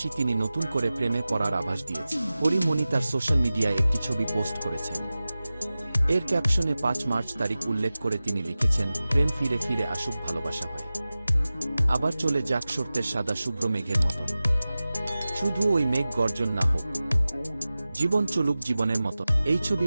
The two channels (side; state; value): both; inverted; correlation -0.96